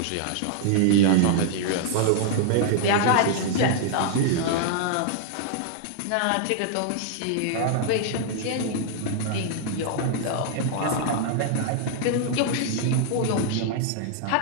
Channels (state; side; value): different; both; correlation -0.01